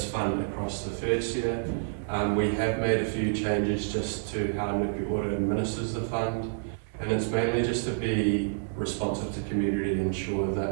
fund across the first year, We have made a few changes just to how Nuku Ora administers the fund, and it's mainly just to be responsive to community and ensure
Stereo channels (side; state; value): left; silent; digital silence